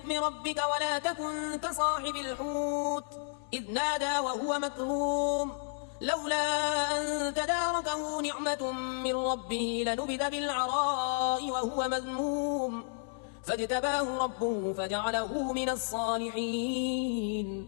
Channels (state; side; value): silent; right; digital silence